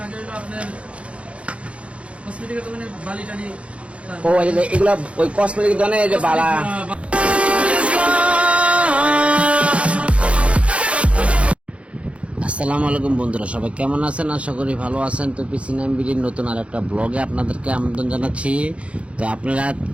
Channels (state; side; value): late; left; 0.062 ms